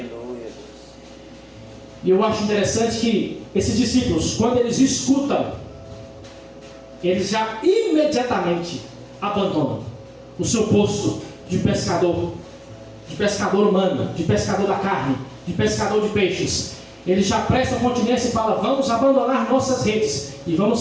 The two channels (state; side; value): identical; both; correlation 1.00